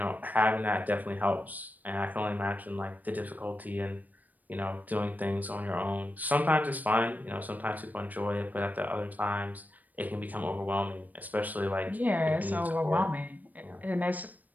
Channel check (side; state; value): left; late; 0.082 ms